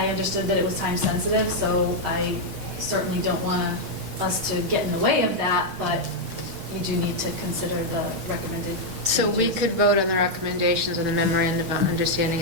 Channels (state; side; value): late; left; 6.5 ms